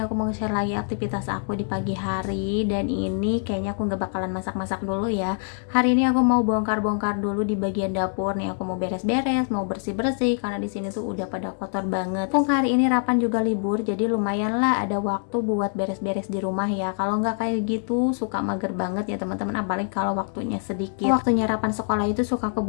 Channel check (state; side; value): silent; right; 62 dB below the other